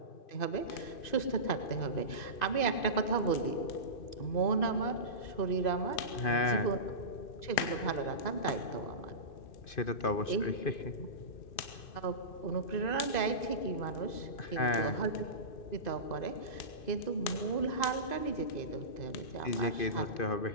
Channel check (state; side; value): late; right; 2.5 ms